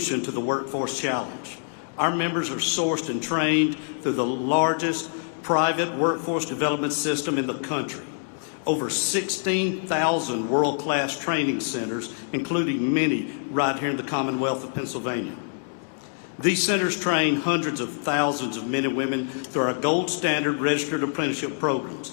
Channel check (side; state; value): right; silent; digital silence